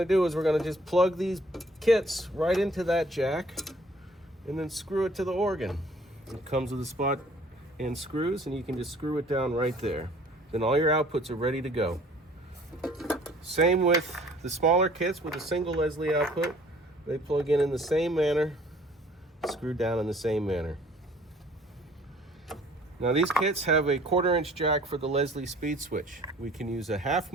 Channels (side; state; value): both; normal; correlation 0.55